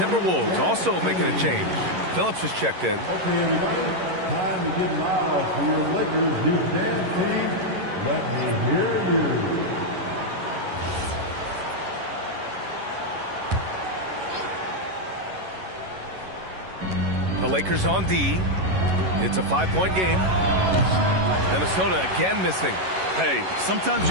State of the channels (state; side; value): late; left; 11 ms